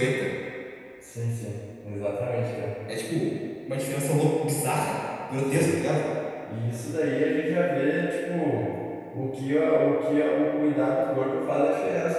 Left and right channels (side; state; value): both; identical; correlation 1.00